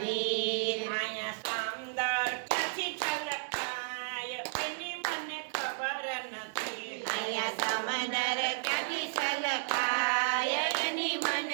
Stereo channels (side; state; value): left; silent; digital silence